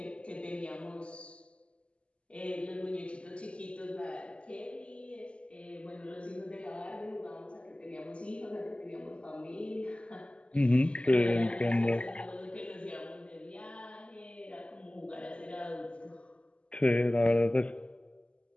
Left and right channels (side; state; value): right; late; 0.057 ms